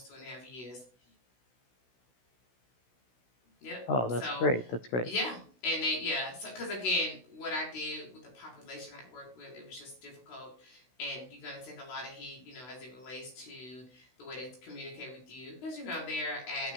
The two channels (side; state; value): right; late; 16 ms